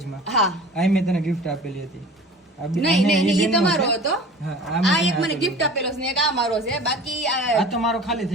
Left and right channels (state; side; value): normal; both; correlation 0.41